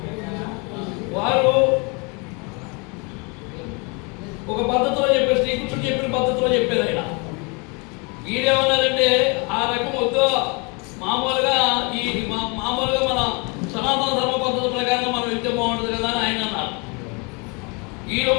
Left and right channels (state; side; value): quieter; right; 31.4 dB